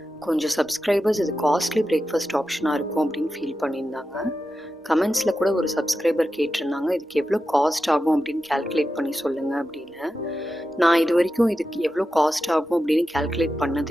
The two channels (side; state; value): both; normal; correlation 0.91